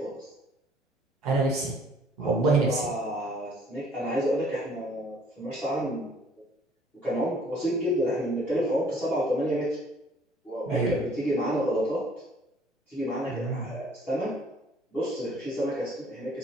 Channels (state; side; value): normal; both; correlation 0.59